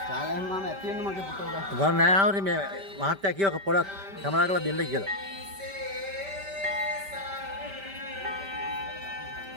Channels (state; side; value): late; left; 5.1 ms